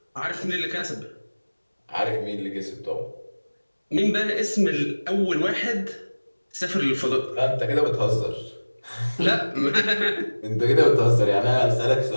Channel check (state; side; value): inverted; both; correlation -1.00